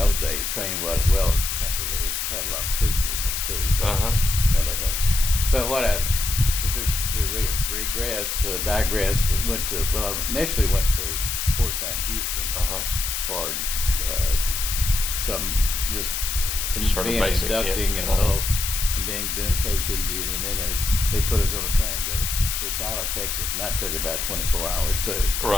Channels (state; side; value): noise; left; hiss, 2 dB below the sound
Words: days train had a lot of troop movements too. So kind of thing. But what I digress. I initially went to Fort Sam Houston for some just being basic, inducting and doing KP duty, and then they put us on a train to go to Tyler, Texas, and that took about 24 hours too.